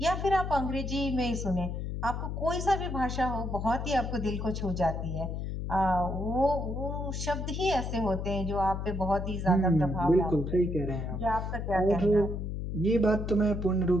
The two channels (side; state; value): left; noise; hum, 4 dB below the sound